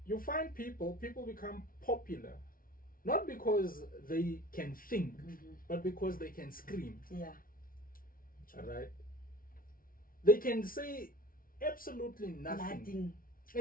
You find people become popular, not because they can think, but because they can scream. Yeah. All right. They can say absolutely nothing.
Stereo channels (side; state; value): right; late; 0.42 ms